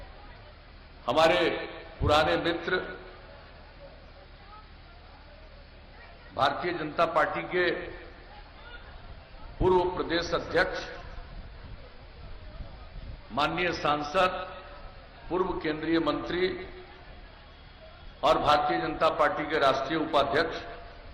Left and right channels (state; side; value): identical; both; correlation 1.00